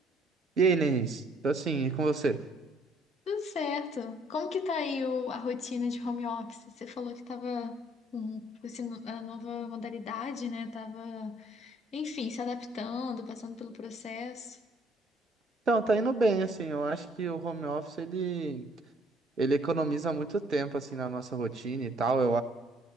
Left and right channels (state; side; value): normal; both; correlation 0.63